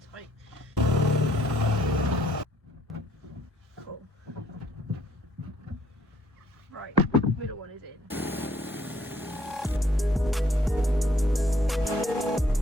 tight. Cool. Right, middle one is in.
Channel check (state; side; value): normal; both; correlation 0.65